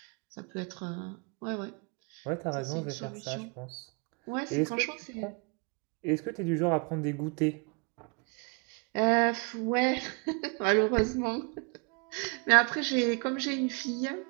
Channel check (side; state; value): left; quieter; 34.4 dB